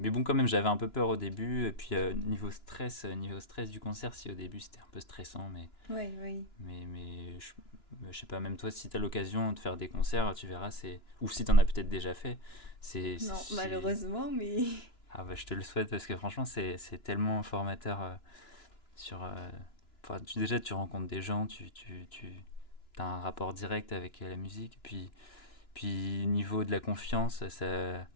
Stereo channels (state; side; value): late; right; 2.9 ms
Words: bon, quand même, j'avais un peu peur au début. Et puis, niveau stress du concert, si au début c'était un peu stressant, mais, Ouais, oui. mais, mais je sais pas, même toi, si tu as l'occasion de faire des concerts, tu verras, ou si tu en as peut-être déjà fait, c'est. c'est, Non, c'est- malheureusement, mais. Ah bah, je te le souhaite parce que franchement, c'est tellement formateur sur. Enfin, déjà, tu rencontres des gens, tu as un rapport direct avec la musique. Puis niveau de la confiance,